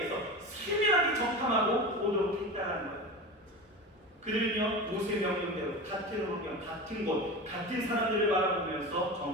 세밀하게 정탐하고 오도록 했다는 거예요. 그들은요 모세 명령대로 같은 환경, 같은 곳, 같은 사람들을 바라보면서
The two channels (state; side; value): normal; both; correlation 0.27